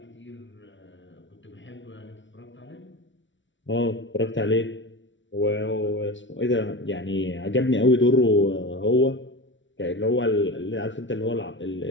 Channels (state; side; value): late; right; 0.55 ms